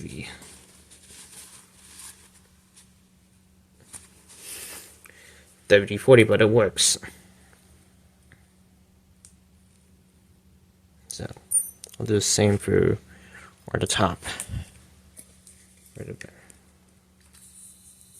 WD-40, but it works. So I'll do the same for the top.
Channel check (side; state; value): both; identical; correlation 1.00